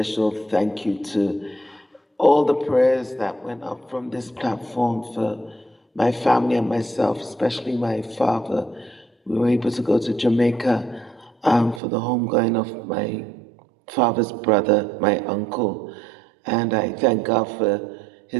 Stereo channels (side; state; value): left; drops out; at 11.8 s